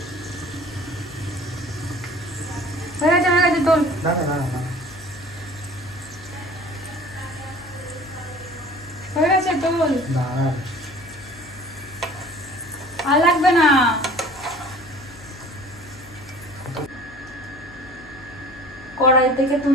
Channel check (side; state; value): left; noise; hum, 20 dB below the sound